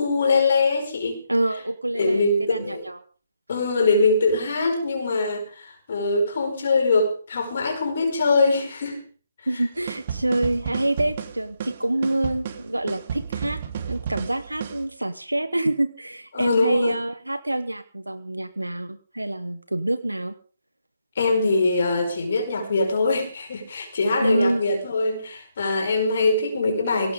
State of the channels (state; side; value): inverted; both; correlation -0.80